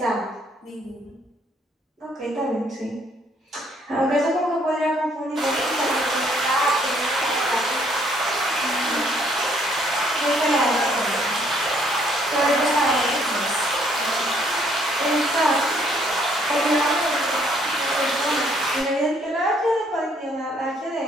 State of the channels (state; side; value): normal; both; correlation 0.65